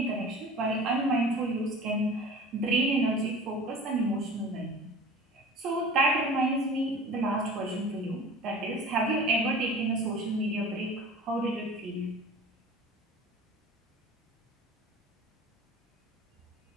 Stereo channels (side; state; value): both; normal; correlation 0.40